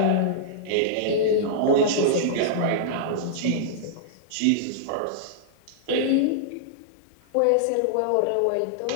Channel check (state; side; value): different; both; correlation -0.02